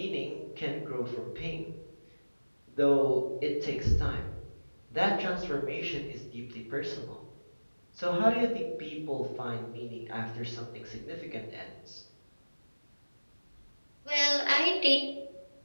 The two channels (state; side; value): inverted; both; correlation -1.00